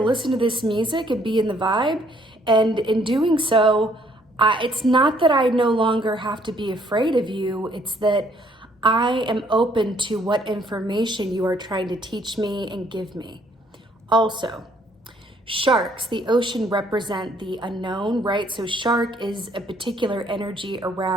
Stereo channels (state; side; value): normal; both; correlation 0.64